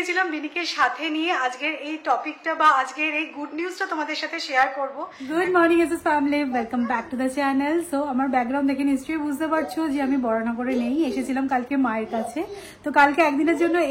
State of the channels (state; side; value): identical; both; correlation 1.00